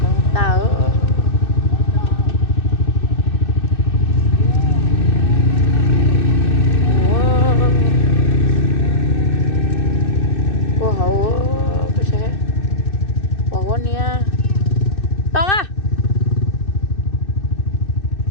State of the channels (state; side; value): late; right; 2.6 ms